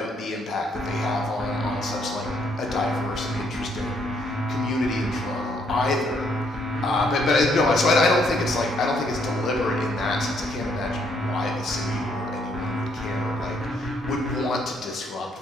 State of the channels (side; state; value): both; normal; correlation 0.70